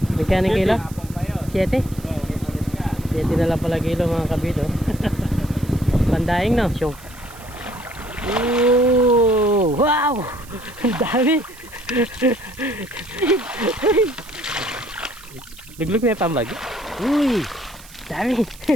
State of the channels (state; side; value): noise; right; hiss, 21 dB below the sound